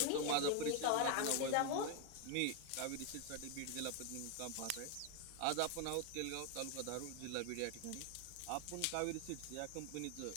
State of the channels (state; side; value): different; both; correlation 0.01